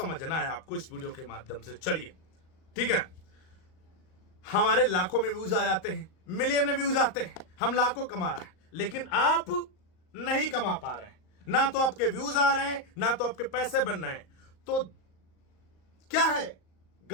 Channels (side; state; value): right; late; 38 ms